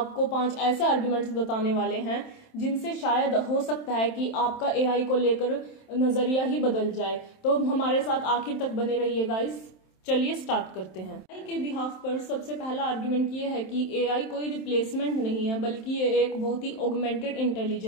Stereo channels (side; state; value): right; late; 27 ms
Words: 5 ऐसे आर्ग्यूमेंट्स बताने वाले हैं जिनसे शायद हो सकता है कि आपका एआई को लेकर नजरिया ही बदल जाए। तो हमारे साथ आखिर तक बने रहिए गाइस। चलिए स्टार्ट करते हैं। एआई के बिहाफ पर सबसे पहला आर्ग्यूमेंट ये है कि एआई कोई रिप्लेसमेंट नहीं है, बल्कि ये एक बहुत ही ऑगमेंटेड